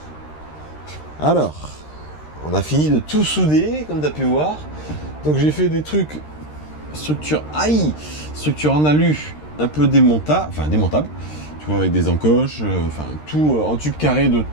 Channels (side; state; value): right; late; 13 ms